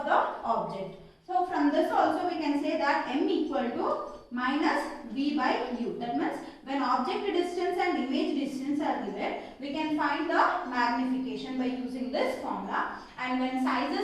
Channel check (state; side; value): identical; both; correlation 1.00